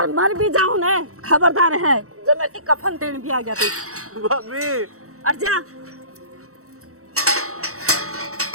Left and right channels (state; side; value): late; left; 0.64 ms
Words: मर भी जाऊं ना खबरदार है, जब मैं कफन देने भी आ गया थी। भाभी और जा।